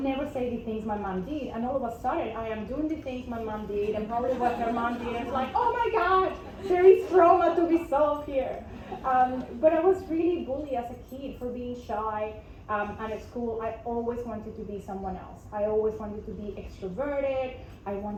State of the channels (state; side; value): identical; both; correlation 1.00